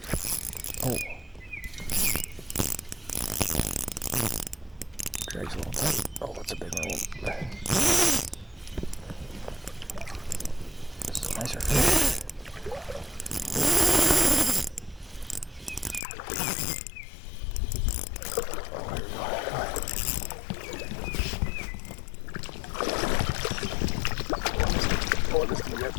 Oh. Drags a little bit. Oh, that's a big one. This is a nicer fish. Oh, this is gonna get.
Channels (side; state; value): right; drops out; at 16.0 s